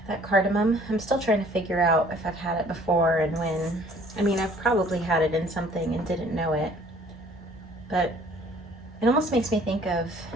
that cardamom. I'm still trying to figure out if I've had it before and when. I mean, I've probably had it in something and didn't know it, but it almost makes me think of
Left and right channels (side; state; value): both; normal; correlation 0.55